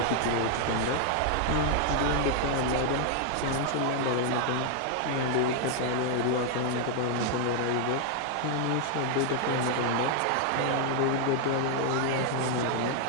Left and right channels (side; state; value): both; different; correlation 0.00